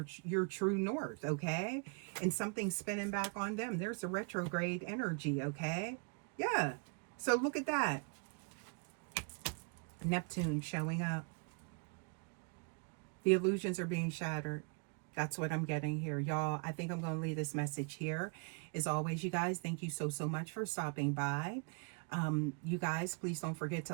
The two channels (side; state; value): left; quieter; 38.0 dB